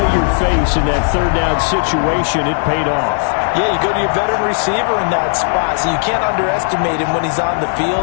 face in that 3rd down situation. It paid off. Yeah, you go to your veteran receiver in that spot, so you can't underestimate him when he's on the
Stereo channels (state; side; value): silent; right; 70 dB below the other